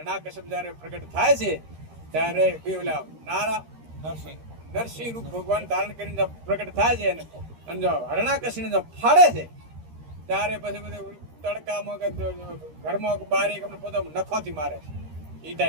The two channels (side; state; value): left; late; 13 ms